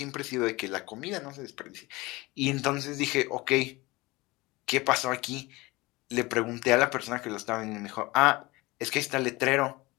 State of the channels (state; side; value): quieter; right; 22.1 dB